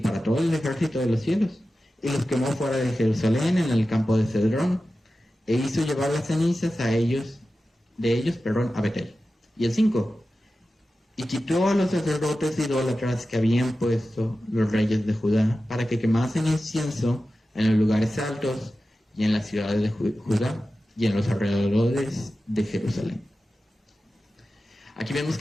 todo el ejército de los cielos, y los quemó fuera de Jerusalén en el campo de Cedrón, e hizo llevar las cenizas de ellos a Betel. Y el 5. Y quitó a los sacerdotes idólatras que habían puesto los reyes de Judá, para que quemasen incienso en los lugares altos y en las ciudades de Judá y en los alrededores de Jerusalén. Aquí vemos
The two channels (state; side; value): normal; both; correlation 0.94